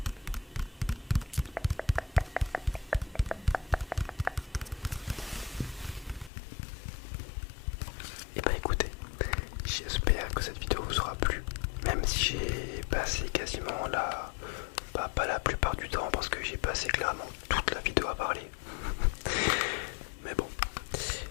Et bah écoutez, j'espère que cette vidéo vous aura plu. Même si j'ai passé quasiment pas la plupart du temps parce que j'ai passé clairement toute la vidéo à parler. Mais bon,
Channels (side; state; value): right; drops out; at 6.3 s